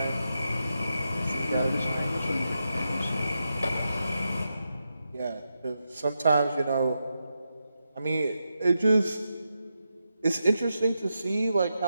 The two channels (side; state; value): both; inverted; correlation -0.87